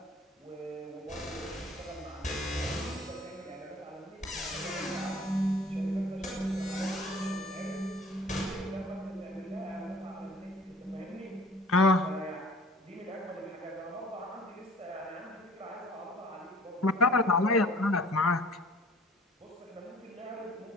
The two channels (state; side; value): normal; both; correlation 0.49